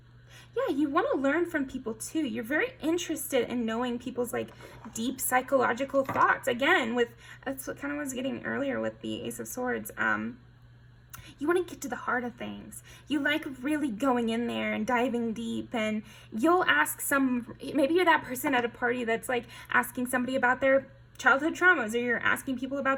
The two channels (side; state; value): both; identical; correlation 1.00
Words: Yeah, you want to learn from people too. You're very interested in knowing people's like deep psychological thoughts. Again, that's what kind of was getting earlier with the Ace of Swords. You want to get to the heart of things. You like really going in there and diving deep, and you'll ask maybe you're that person at a party that's like asking somebody about their childhood traumas, or you're asking people